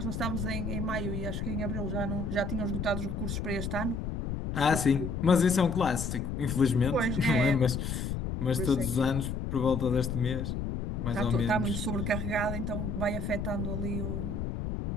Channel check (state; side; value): noise; left; rumble, 3 dB below the sound